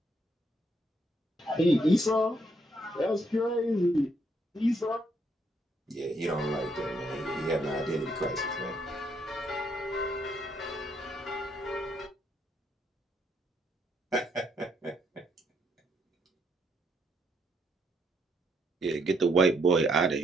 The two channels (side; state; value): both; normal; correlation 0.73